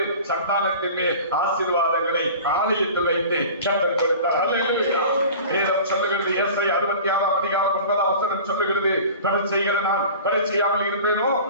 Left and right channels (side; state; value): both; inverted; correlation -0.39